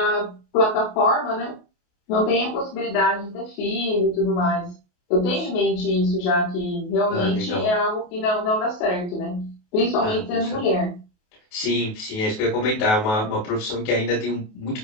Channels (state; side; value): late; right; 28 ms